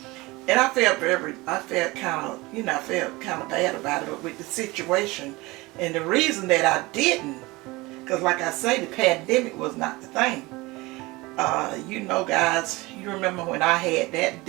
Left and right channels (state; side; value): quieter; left; 22.2 dB